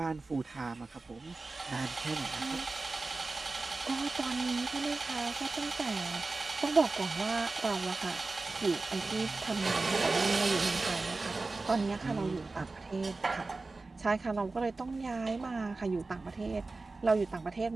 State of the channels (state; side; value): quieter; left; 3.6 dB